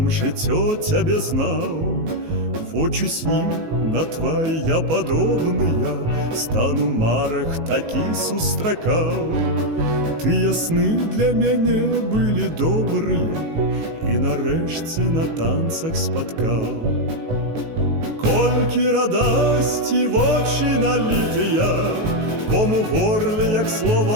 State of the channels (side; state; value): left; late; 19 ms